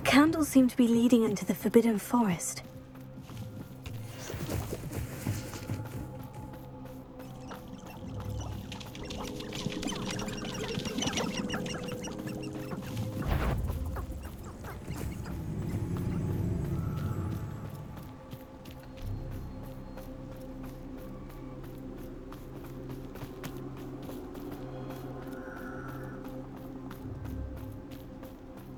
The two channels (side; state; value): both; identical; correlation 1.00